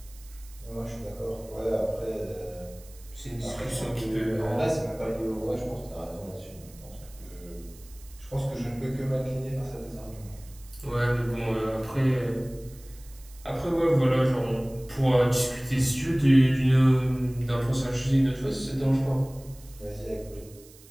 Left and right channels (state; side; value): noise; right; hiss, 23 dB below the sound